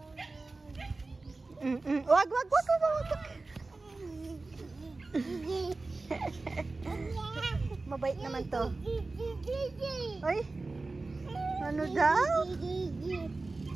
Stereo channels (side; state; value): left; quieter; 3.4 dB